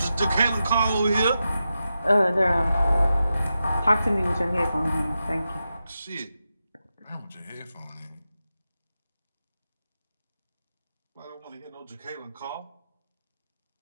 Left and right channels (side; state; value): both; inverted; correlation -0.90